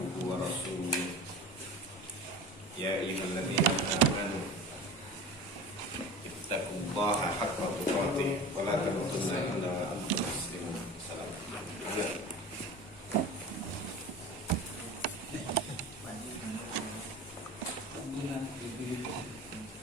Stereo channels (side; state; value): both; normal; correlation 0.34